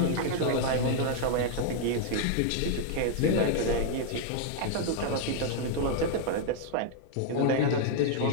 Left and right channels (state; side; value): different; both; correlation 0.00